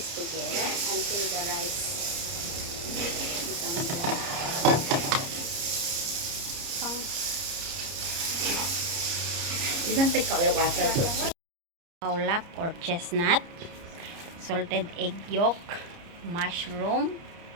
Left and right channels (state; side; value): late; left; 30 ms